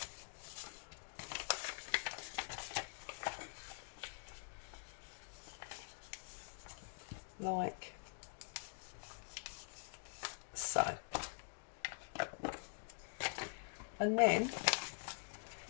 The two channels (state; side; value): silent; right; digital silence